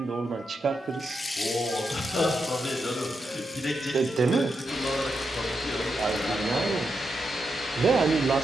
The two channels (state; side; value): normal; both; correlation 0.85